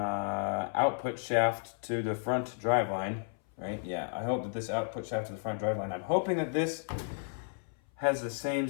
shaft to the front driveline, right? Yeah, I hope that this output shaft to the front driveline, I'm hoping that this has the same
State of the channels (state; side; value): silent; right; 56 dB below the other